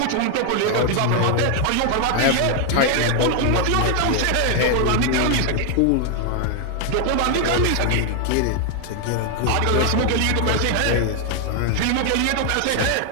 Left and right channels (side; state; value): both; different; correlation 0.00